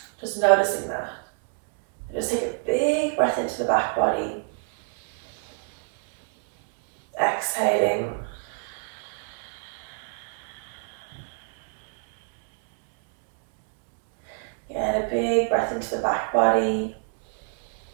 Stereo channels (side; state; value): left; silent; digital silence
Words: just noticing that. Just take a big breath into the back body. Exhaling. Get a big breath into the back body.